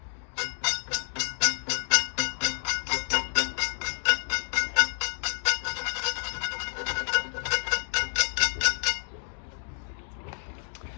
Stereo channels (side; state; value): right; silent; digital silence